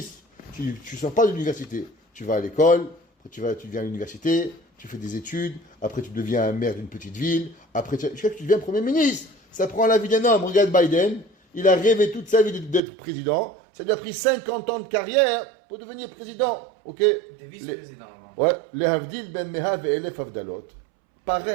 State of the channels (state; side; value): drops out; left; at 12.8 s